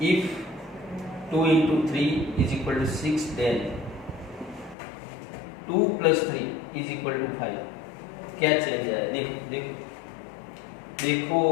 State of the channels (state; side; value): drops out; right; at 4.8 s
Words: if 2 into 3 is equal to 6 then 2 plus 3 is equal to 5, क्या चेंज आया, देखो देखो देखो